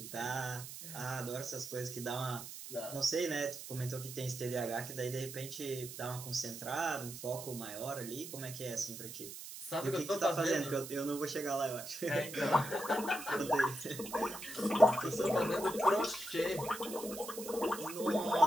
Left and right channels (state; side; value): noise; right; hiss, 11 dB below the sound